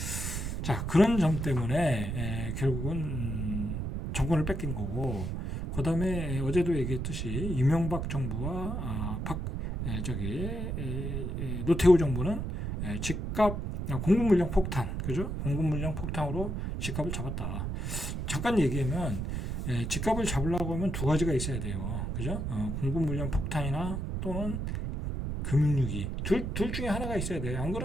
자, 그런 점 때문에 결국은 정권을 뺏긴 거고, 그 다음에 어제도 얘기했듯이 이명박 정부와 노태우 정부는 집값 공급 물량 폭탄, 그죠? 공급 물량 폭탄으로 집값을 잡았다. 잠깐 얘기하면 집값을 잡으려고 하면 두 가지가 있어야 돼요, 그죠? 공급 물량 폭탄이나 또는 금융위기, 둘 중에 하나가 있어야 돼요. 안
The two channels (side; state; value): right; noise; rumble, 3 dB below the sound